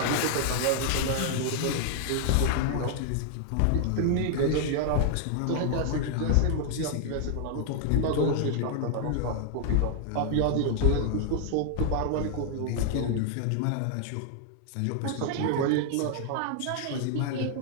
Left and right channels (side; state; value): both; different; correlation 0.00